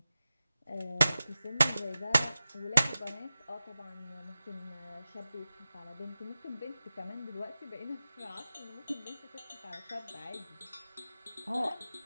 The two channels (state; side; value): inverted; both; correlation -0.94